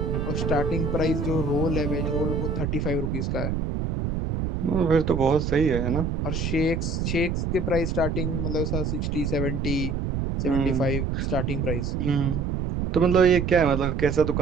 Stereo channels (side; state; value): right; noise; rumble, 1 dB below the sound